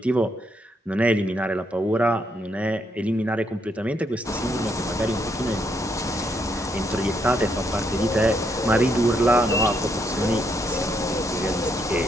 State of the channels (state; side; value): normal; both; correlation 0.76